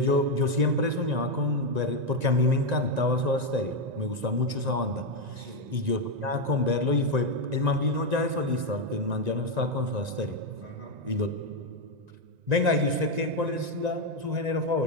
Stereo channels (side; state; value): left; late; 1.9 ms